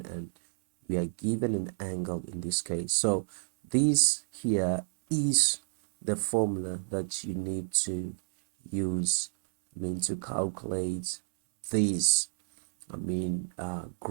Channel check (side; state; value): left; silent; 58 dB below the other